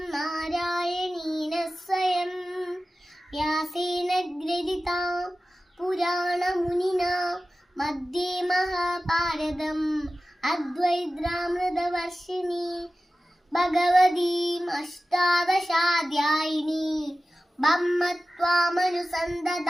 നാരായണീന സ്വയം വ്യാസേന ഗ്രഥിതാം പുരാണമുനിനാ മധ്യേ മഹാഭാരതം അദ്വൈതാമൃതവർഷിണി ഭഗവതീം അഷ്ടാദശാധ്യായിനി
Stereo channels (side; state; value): both; normal; correlation 0.95